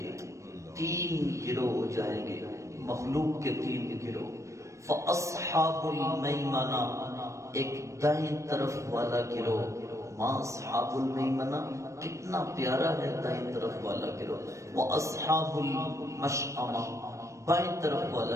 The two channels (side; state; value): left; late; 0.15 ms